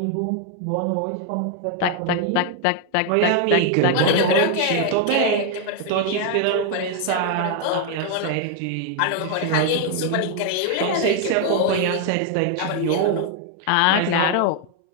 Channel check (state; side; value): different; both; correlation 0.00